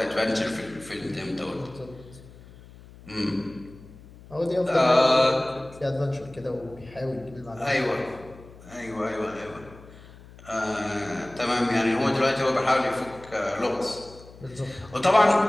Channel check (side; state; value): left; noise; hum, 20 dB below the sound